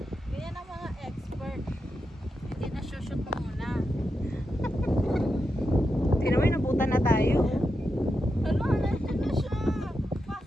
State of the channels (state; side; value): normal; both; correlation 0.87